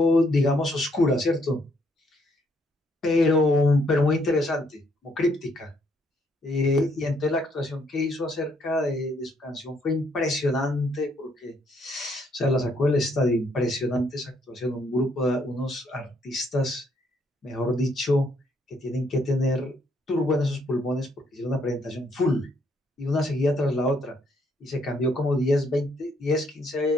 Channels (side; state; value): both; normal; correlation 0.71